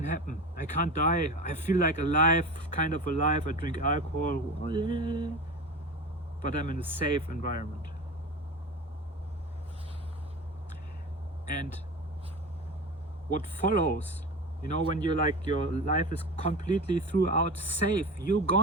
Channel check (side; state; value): both; normal; correlation 0.30